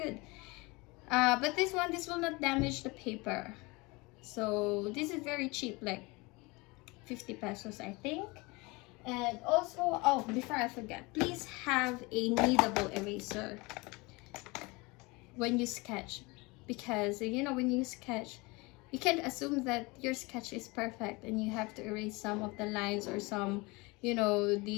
But this one, this will not damage the paper. So this is very cheap, like 50 pesos, I think. And also, oh, before I forget, please have a kneadable eraser when you sketch, because you know, when you sketch, you can't assume that your sketch is perfect and you have to erase some of the lines or some, you know,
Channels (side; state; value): right; quieter; 25.2 dB